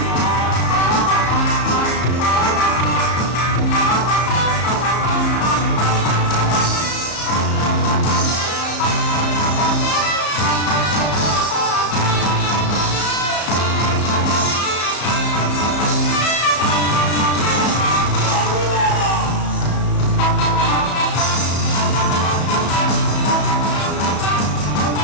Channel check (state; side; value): late; right; 34 ms